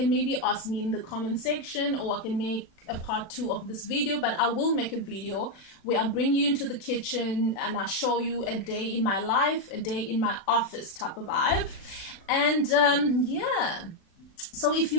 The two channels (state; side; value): late; right; 36 ms